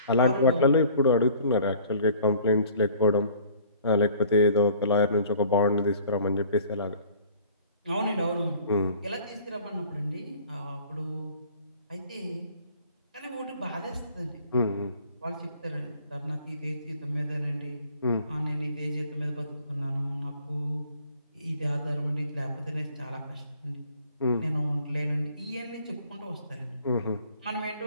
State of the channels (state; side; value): inverted; both; correlation -0.52